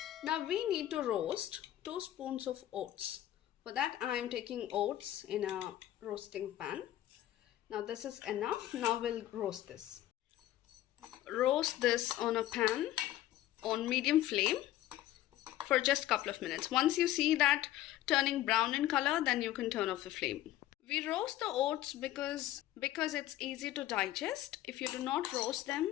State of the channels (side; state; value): right; quieter; 13.8 dB